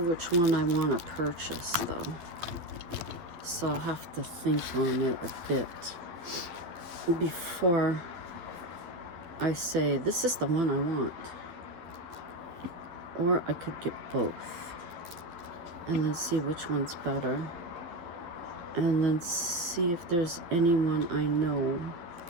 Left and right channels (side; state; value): left; late; 12 ms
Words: which one I want to purchase though, so I'll have to think on it a bit before I say this is the one I want. Or I could get both and then see which one's better, and then see if there's anyone I know